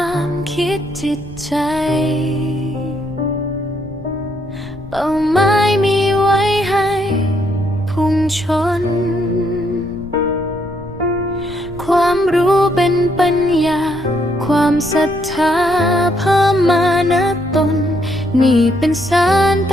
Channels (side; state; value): left; noise; rumble, 17 dB below the sound